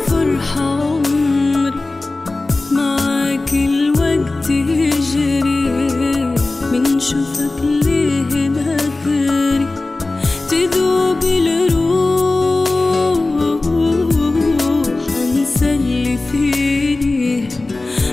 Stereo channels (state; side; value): quieter; right; 3.1 dB